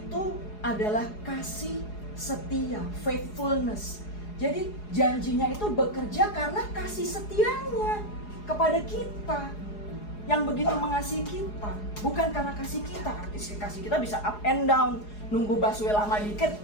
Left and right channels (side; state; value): right; late; 4.8 ms